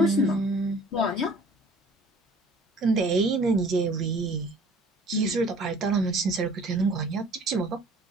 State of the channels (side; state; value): both; normal; correlation 0.51